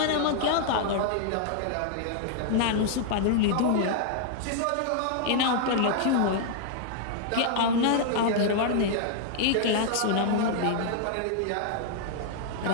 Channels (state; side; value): different; both; correlation 0.00